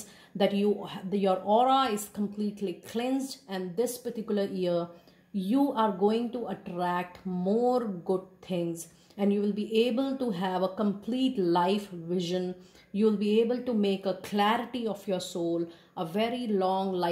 that your aura is completely cleansed, and this particular year you are going to attract more good things, and you will be able to have a complete life vision. You will be able to make a clarity of your soul, a very long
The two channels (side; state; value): both; identical; correlation 1.00